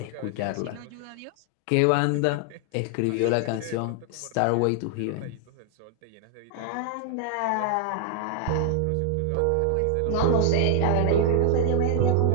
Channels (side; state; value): both; different; correlation 0.00